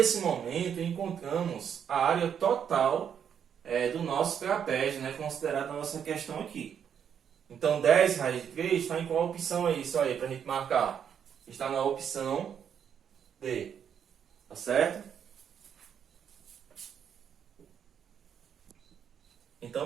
momento, encontramos a área total do nosso trapézio, né? Considerada na nossa questão aqui. Então, 10 raiz de 3 está em qual opção aí? Isso aí, para a gente marcar. Está na opção D. Tá certo?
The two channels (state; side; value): quieter; left; 8.2 dB